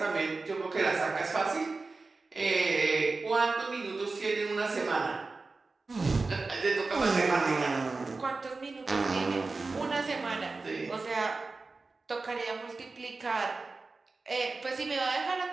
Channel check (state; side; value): quieter; left; 3.8 dB